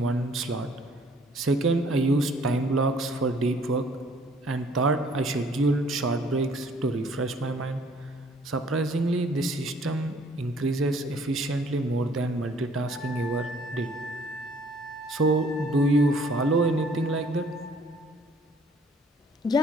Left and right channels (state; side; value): normal; both; correlation 0.59